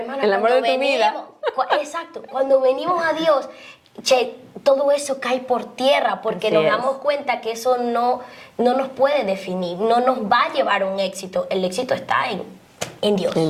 el amor de tu vida. Exacto, cuando venimos a Dios, todo eso cae por tierra porque Así nos es. damos cuenta que eso no nos puede definir, no nos va a llevar a un éxito. El éxito está en Dios.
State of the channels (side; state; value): both; identical; correlation 1.00